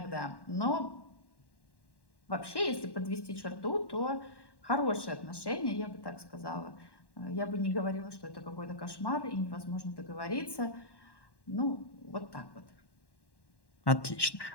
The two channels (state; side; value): late; right; 1.1 ms